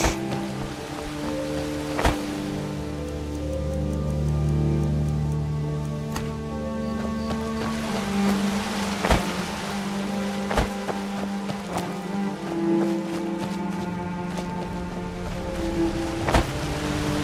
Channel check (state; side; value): identical; both; correlation 1.00